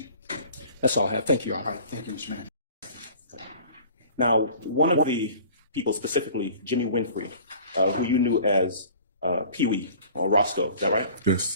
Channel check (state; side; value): inverted; both; correlation -0.47